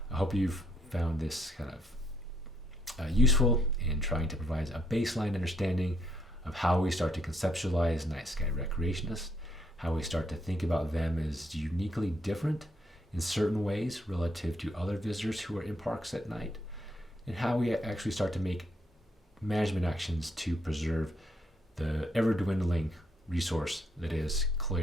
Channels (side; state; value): both; normal; correlation 0.72